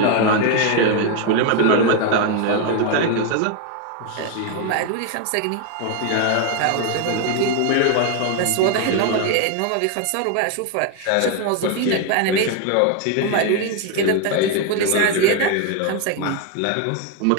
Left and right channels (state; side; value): different; both; correlation 0.01